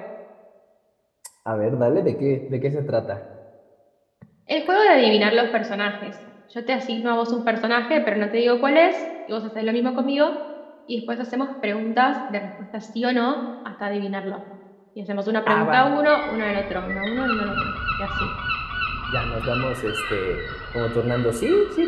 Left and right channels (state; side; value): identical; both; correlation 1.00